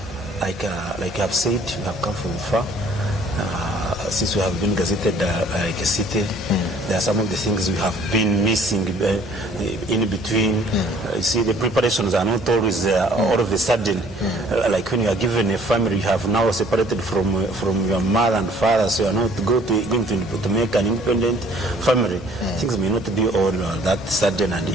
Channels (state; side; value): normal; both; correlation 0.57